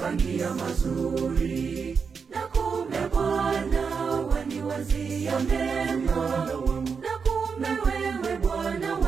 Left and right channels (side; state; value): left; quieter; 5.7 dB